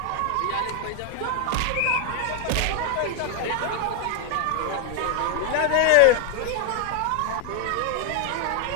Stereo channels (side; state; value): both; different; correlation 0.00